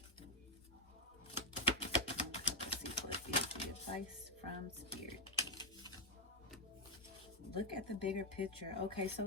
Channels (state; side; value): normal; both; correlation 0.02